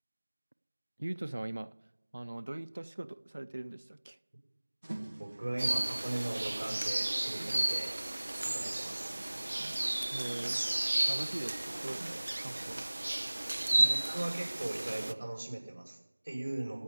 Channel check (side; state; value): both; inverted; correlation -1.00